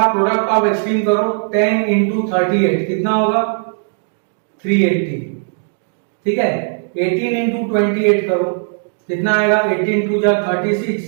प्रोडक्ट ऑफ एक्सट्रीम करो, 10 इंटू 38 कितना होगा, 380। ठीक है, 18 इंटू 28 करो, कितना आएगा, 18 टू जा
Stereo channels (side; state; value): left; silent; digital silence